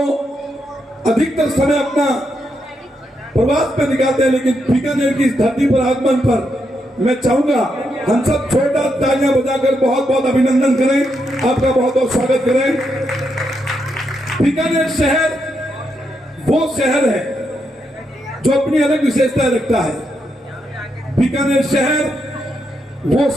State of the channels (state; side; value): normal; both; correlation 0.81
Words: अधिकतर समय अपना प्रवास पे निकालते हैं, लेकिन बीकानेर की इस धरती पर आगमन पर मैं चाहूंगा हम सब छोटा तालियां बजाकर बहुत बहुत अभिनंदन करें, आपका बहुत बहुत स्वागत करें। बीकानेर शहर वो शहर है जो अपनी अलग विशेषता रखता है। बीकानेर शहर वो